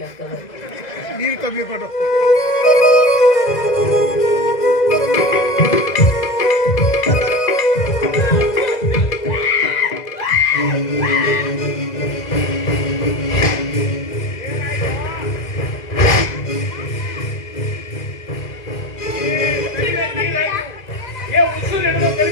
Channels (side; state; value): right; late; 2.0 ms